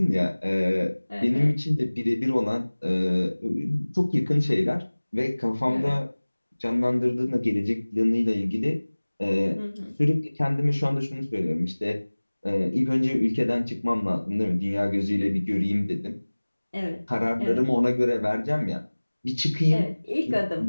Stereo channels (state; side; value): inverted; both; correlation -1.00